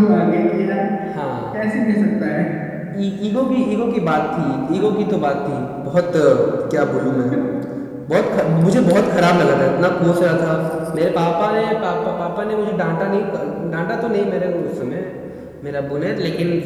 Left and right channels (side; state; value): both; identical; correlation 1.00